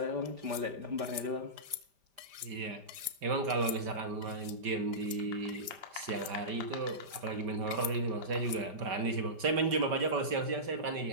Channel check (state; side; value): late; left; 5.0 ms